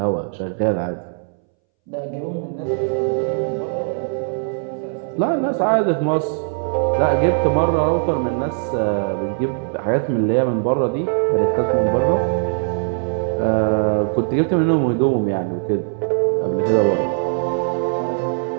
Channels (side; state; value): left; silent; 64 dB below the other